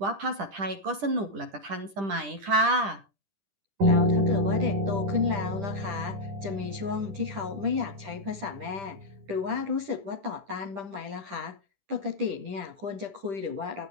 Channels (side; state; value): left; late; 10 ms